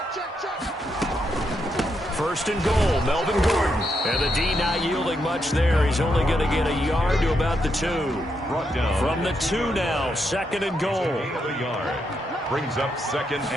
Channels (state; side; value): normal; both; correlation 0.81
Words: First and goal, Melvin Gordon. And the D not yielding much there. He's only going to get a yard to about the 2. Brought down. From the 2 now, 2nd and goal. Gain of a yard. Brings up 2nd